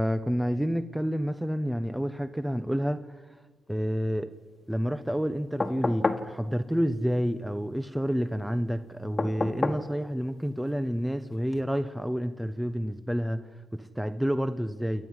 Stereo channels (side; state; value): both; normal; correlation 0.98